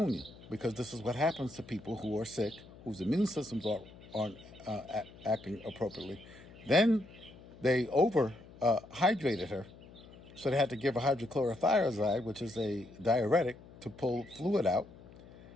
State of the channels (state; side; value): noise; left; hum, 20 dB below the sound